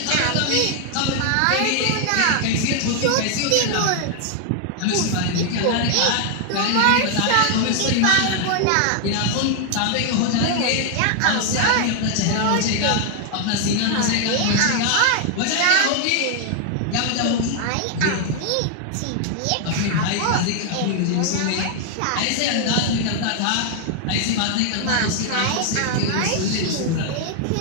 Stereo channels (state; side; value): different; both; correlation 0.00